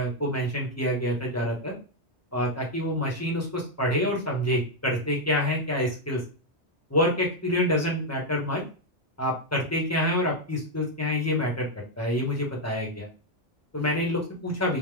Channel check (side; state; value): both; normal; correlation 0.01